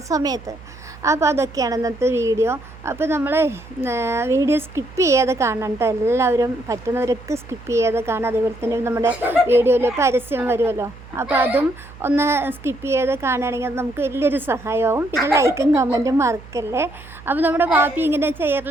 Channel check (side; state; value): right; noise; hum, 19 dB below the sound